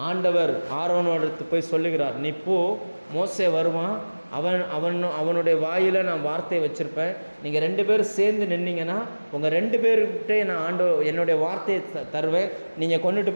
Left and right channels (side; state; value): both; inverted; correlation -1.00